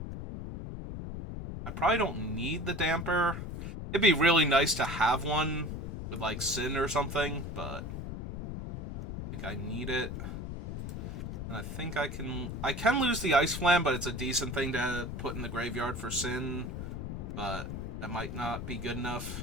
I probably don't need the damper. It'd be really nice to have one with, like, Sin or something, but I think I need it. And I think I can lose the Ice Flam, but it's a decent thing to put in the graveyard for Sin, but that might not be good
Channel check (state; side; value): noise; left; rumble, 6 dB below the sound